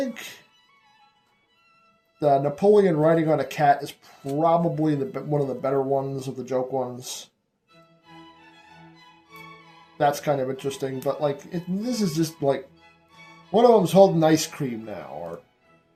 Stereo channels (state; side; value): identical; both; correlation 1.00